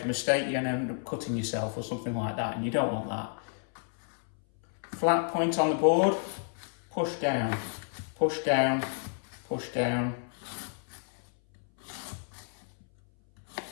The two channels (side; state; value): right; silent; 57 dB below the other